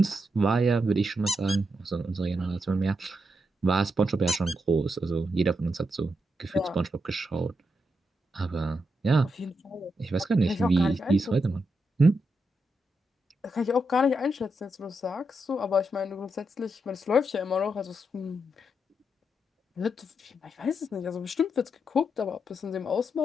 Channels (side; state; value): both; normal; correlation 0.83